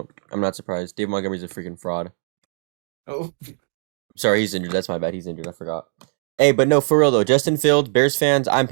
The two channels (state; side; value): silent; left; digital silence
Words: I'm not surprised. Dave Montgomery's a freaking fraud. Oh, Sorry, he's injured. That's my bad. He's injured. I forgot. Hey, but no, for real though. Justin Fields, Bears fans, I'm